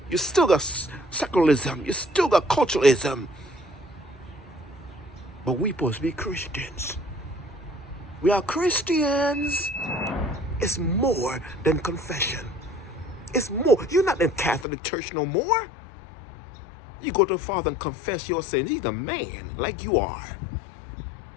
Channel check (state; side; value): drops out; right; at 14.7 s